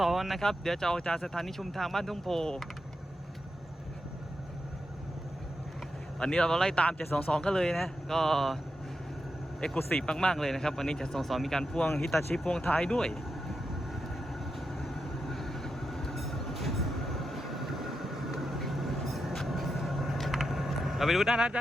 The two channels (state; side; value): normal; both; correlation 0.87